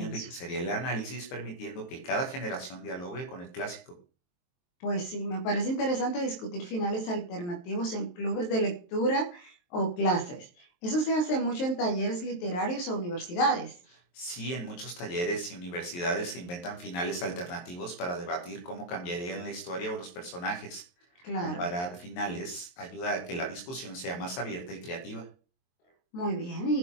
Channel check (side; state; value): right; late; 23 ms